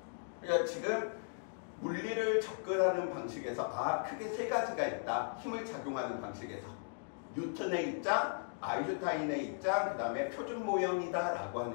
그러니까 지금 물리를 접근하는 방식에서 크게 세 가지가 있다. 힘을 작용하는 방식에서 뉴턴의 입장, 아인슈타인의 입장, 그 다음에 표준 모형이다 라고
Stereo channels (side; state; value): right; silent; digital silence